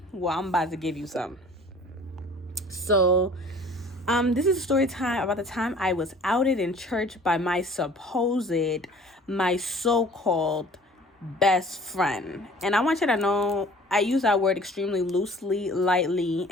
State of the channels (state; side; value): normal; both; correlation 0.49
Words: well, I'm about to give you some. So, this is a story time about the time I was outed in church by my so-called best friend. And I want you to know I use that word extremely loosely, lightly,